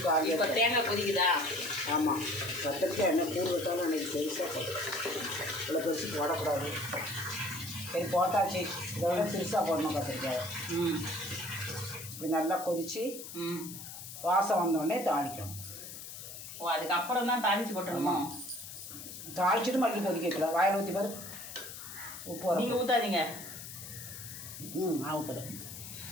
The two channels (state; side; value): noise; left; hiss, 11 dB below the sound